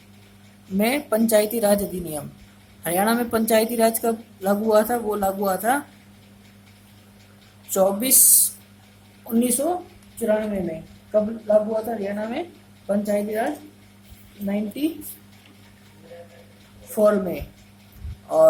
में पंचायती राज अधिनियम। हरियाणा में पंचायती राज कब लागू हुआ था? वो लागू हुआ था 1994 में। कब लागू हुआ था हरियाणा में पंचायती राज? 94 में।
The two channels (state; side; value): identical; both; correlation 1.00